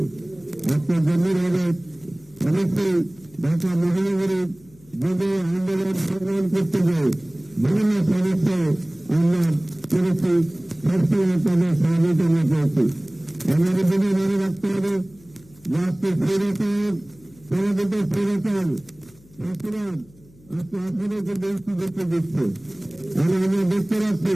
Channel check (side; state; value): left; noise; hum, 26 dB below the sound